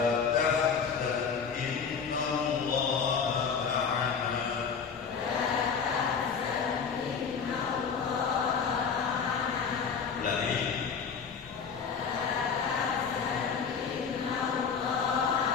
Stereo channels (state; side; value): quieter; right; 6.1 dB